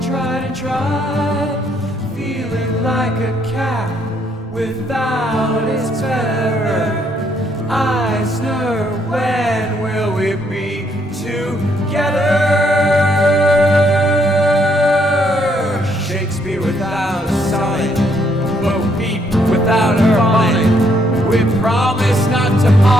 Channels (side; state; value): both; normal; correlation 0.71